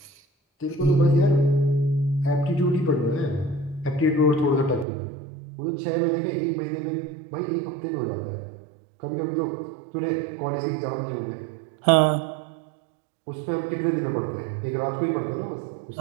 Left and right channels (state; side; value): drops out; left; at 4.9 s